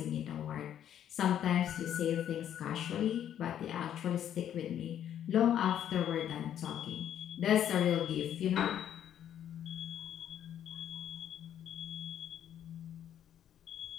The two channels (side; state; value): right; quieter; 10.2 dB